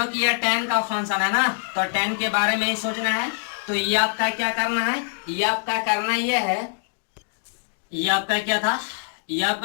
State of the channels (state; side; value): silent; right; digital silence